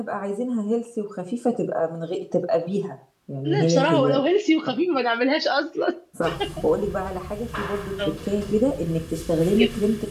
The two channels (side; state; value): both; identical; correlation 1.00